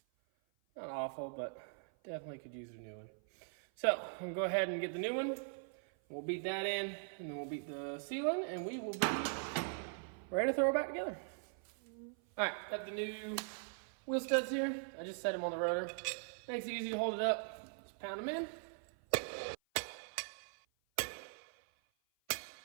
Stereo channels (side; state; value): left; silent; 51 dB below the other